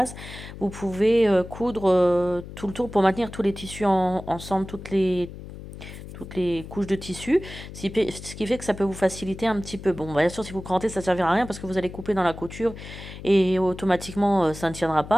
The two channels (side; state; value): left; noise; hum, 13 dB below the sound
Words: Vous pouvez coudre tout le tour pour maintenir tous les tissus ensemble, toutes les couches de tissu, ce qui fait que ça peut vous faciliter un petit peu. Bon, bien sûr, si vous crantez, ça ne servira à rien parce que vous allez couper dans la couture et automatiquement, ça ne tiendra